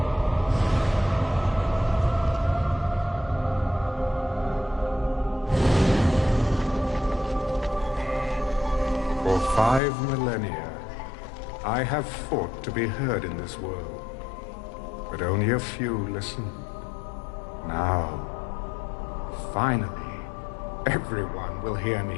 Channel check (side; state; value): right; drops out; at 9.8 s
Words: For 5 millennia, I have fought to be heard in this world, but only a few listened. Now, finally, everyone will hear